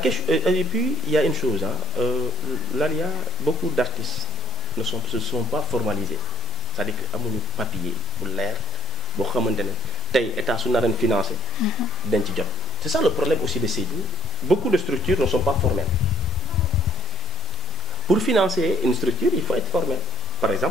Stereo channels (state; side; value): normal; both; correlation 0.68